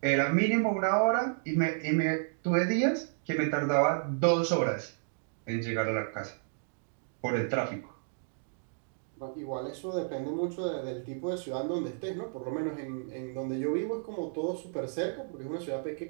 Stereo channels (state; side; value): silent; left; digital silence